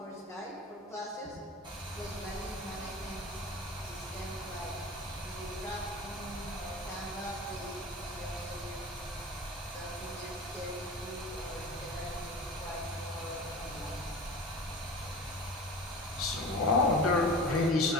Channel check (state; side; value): normal; both; correlation 0.35